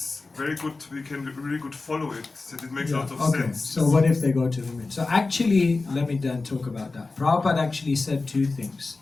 very good, we can really good follow it, that it makes a lot of sense. So what if they go to the moon? So actually, let me then talk about that. Prabhupada actually said two things.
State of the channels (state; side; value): quieter; right; 3.7 dB